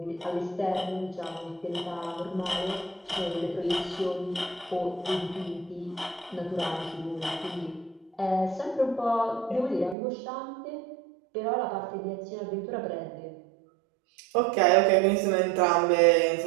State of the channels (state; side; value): drops out; left; at 10.0 s